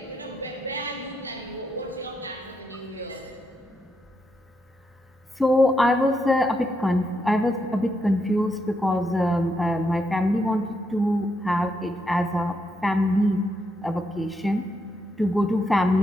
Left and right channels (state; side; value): normal; both; correlation 0.80